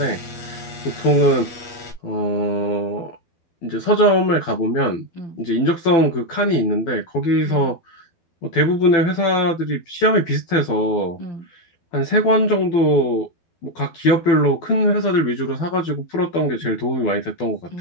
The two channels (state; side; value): late; right; 12 ms